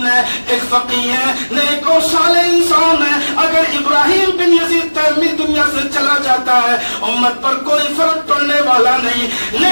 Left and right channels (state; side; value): inverted; both; correlation -1.00